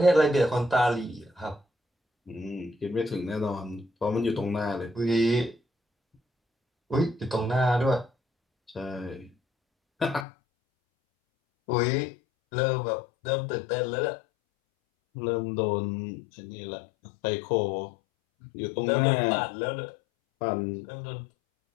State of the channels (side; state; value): right; drops out; at 10.2 s